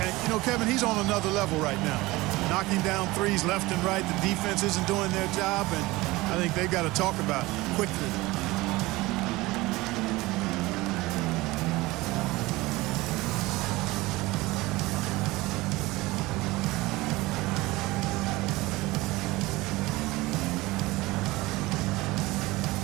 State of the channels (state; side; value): quieter; left; 20.5 dB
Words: And, you know, Kevin, he's on another level right now. Knocking down threes left and right. The defense isn't doing their job, and I think they've got to talk about it quickly.